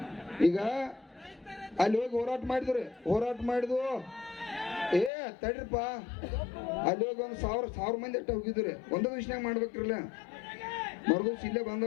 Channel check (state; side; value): drops out; right; at 5.1 s